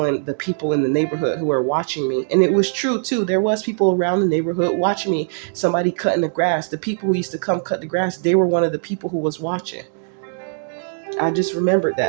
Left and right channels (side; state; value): left; silent; digital silence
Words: the people in the neighborhood who were watching me. And it was true too. There was people around the neighborhood watching me. Somebody cutting the grass. The people who used to come cut the grass, they were one of the people who was watching. I just remembered